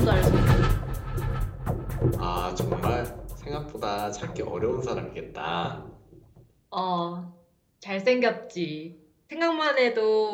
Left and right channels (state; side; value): identical; both; correlation 1.00